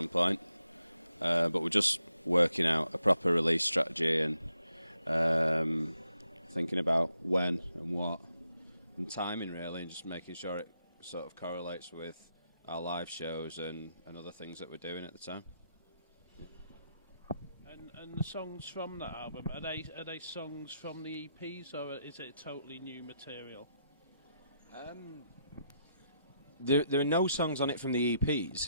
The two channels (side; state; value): both; inverted; correlation -0.81